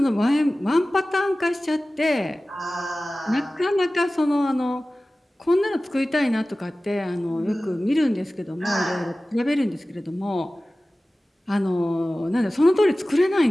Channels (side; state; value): both; normal; correlation 0.97